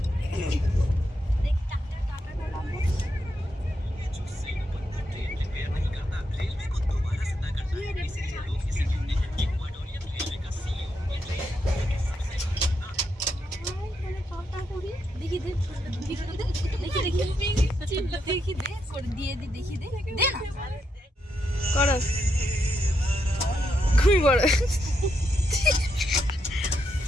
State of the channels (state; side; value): normal; both; correlation 0.81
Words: দেখি দে, দেখি দে করে দিয়ে দি, দেখি দে, দে না করো ঘুমি পড়ো।